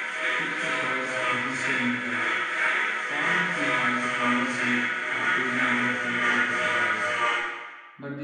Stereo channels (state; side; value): identical; both; correlation 1.00